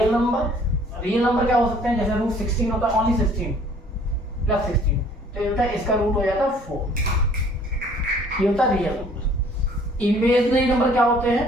नंबर। रियल नंबर क्या हो सकते हैं? जैसे रूट 16 होता है, ओनली 16 प्लस 16, तो ये होता है इसका रूट हो जाता है 4। ये होता है रियल नंबर। इमेजिनरी नंबर क्या होते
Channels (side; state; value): both; normal; correlation 0.56